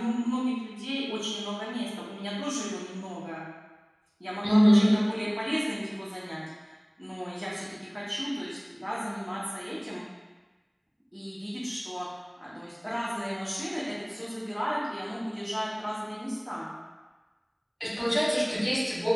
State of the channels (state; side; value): identical; both; correlation 1.00